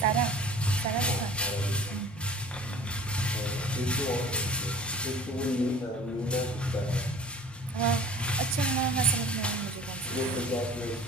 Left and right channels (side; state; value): both; normal; correlation 0.45